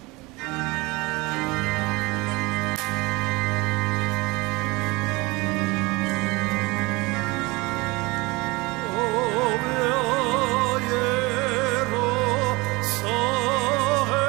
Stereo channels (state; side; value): quieter; left; 23.9 dB